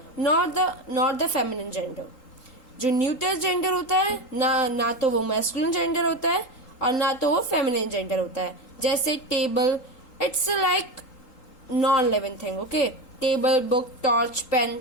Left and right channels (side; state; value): right; late; 3.8 ms